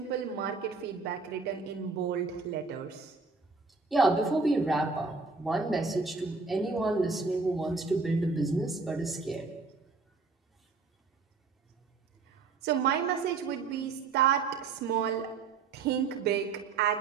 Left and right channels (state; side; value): quieter; left; 4.5 dB